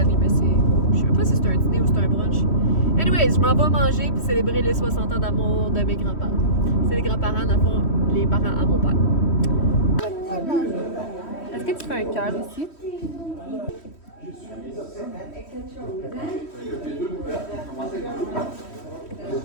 mais c'est... Je sais même pas si c'est un dîner ou c'est un brunch. Anyways, je m'en vais manger puis célébrer les 60 ans d'amour de mes grands-parents. C'est les grands-parents, dans le fond, les parents à mon père. Est-ce que tu fais un cœur ici?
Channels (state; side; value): late; right; 3.1 ms